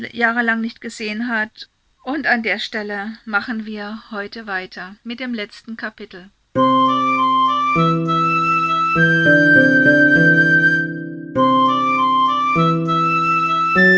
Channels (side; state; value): both; identical; correlation 1.00